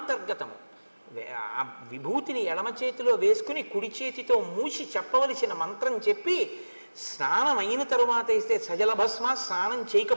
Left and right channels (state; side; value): inverted; both; correlation -1.00